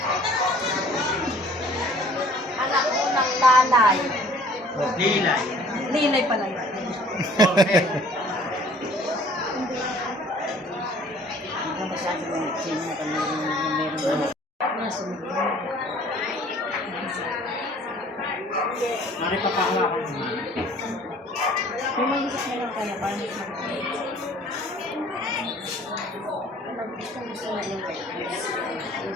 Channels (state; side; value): normal; both; correlation 0.53